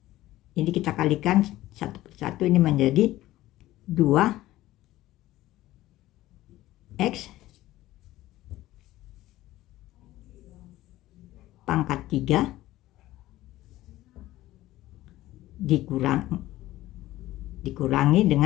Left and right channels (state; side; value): quieter; right; 15.9 dB